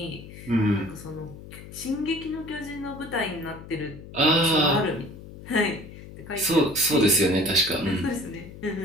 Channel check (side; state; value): left; noise; hum, 15 dB below the sound